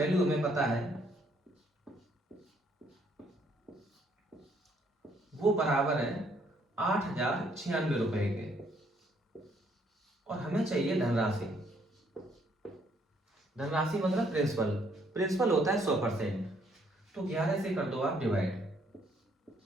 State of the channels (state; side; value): normal; both; correlation 0.68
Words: हमें पता है वो बराबर है 8,096 रुपए के, और हमें चाहिए धनराशि। धनराशि मतलब प्रिंसिपल। प्रिंसिपल होता है 100%। तो 11 से कर दो आप डिवाइड,